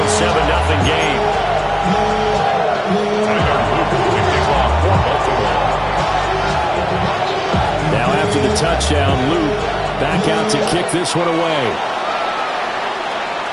7-0 game. Now after the touchdown, Luke back out to kick this one away.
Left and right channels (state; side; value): identical; both; correlation 1.00